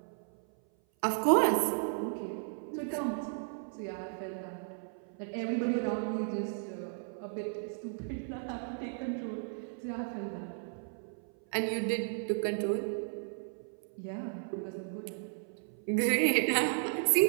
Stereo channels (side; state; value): left; silent; 55 dB below the other